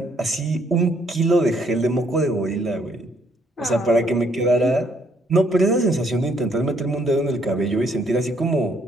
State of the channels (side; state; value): both; normal; correlation 0.67